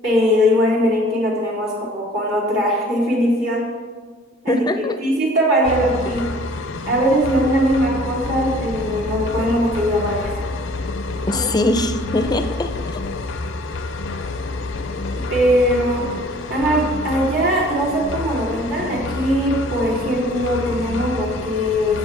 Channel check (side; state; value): both; normal; correlation 0.53